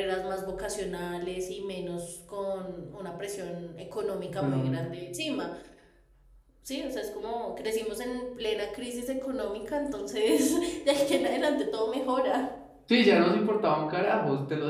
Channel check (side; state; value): both; identical; correlation 1.00